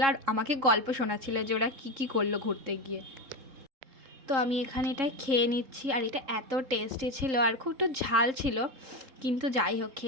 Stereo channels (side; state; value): left; late; 3.7 ms